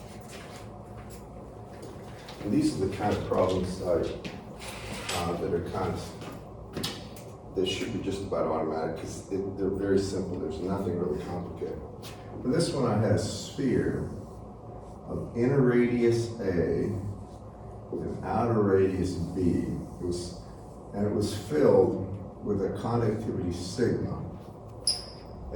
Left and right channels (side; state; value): both; identical; correlation 1.00